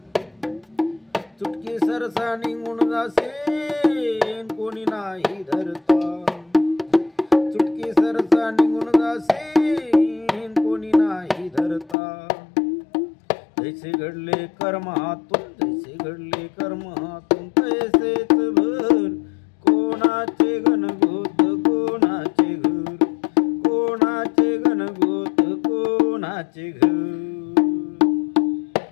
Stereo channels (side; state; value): right; drops out; at 12.0 s